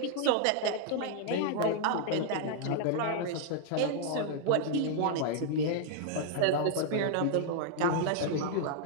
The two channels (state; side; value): different; both; correlation -0.01